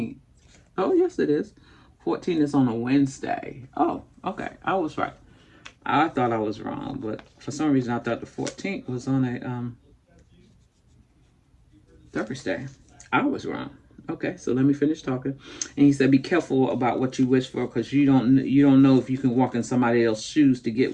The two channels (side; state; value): both; identical; correlation 1.00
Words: Oh, yes, it is. 14 is on a Wednesday. Oh, okay. I was right. I thought I was wrong, but for some reason I thought the 14th was on a Thursday. I was wrong. Okay, so let me finish talking. And he said, "Be careful about what you wish for, because you don't know if you can walk in somebody else's shoes to get